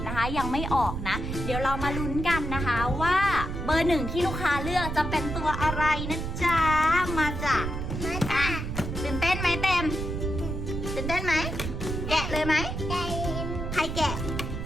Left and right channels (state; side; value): noise; right; rumble, 4 dB below the sound